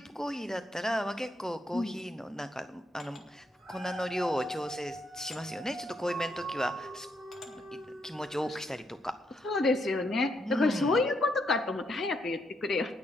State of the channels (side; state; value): both; normal; correlation 0.77